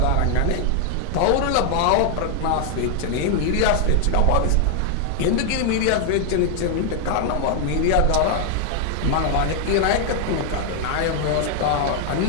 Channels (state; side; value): different; both; correlation 0.00